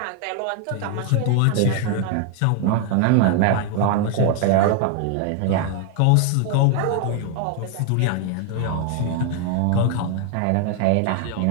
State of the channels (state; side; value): different; both; correlation 0.00